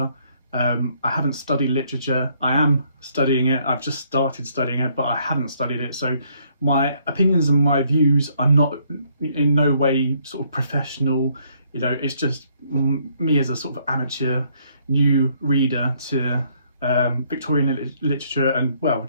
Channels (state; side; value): inverted; both; correlation -0.68